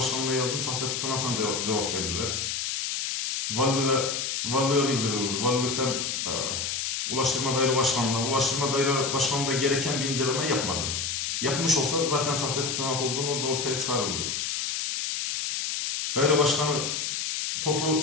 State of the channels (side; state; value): left; noise; hiss, 2 dB below the sound